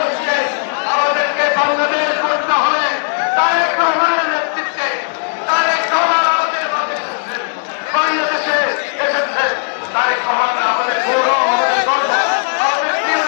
আমাদেরকে বাংলাদেশ করতে হবে। তারেক রহমানের নেতৃত্বে তারেক রহমান আমাদের বাংলাদেশে এসেছে। তারেক রহমান আমাদের গৌরব, আমাদের গর্ব, আমাদের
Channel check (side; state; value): right; silent; digital silence